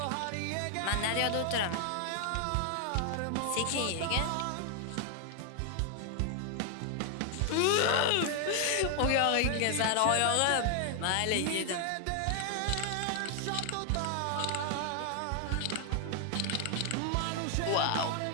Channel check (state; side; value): different; both; correlation 0.00